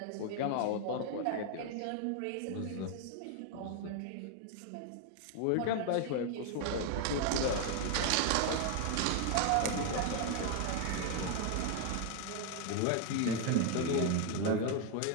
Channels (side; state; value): both; different; correlation 0.01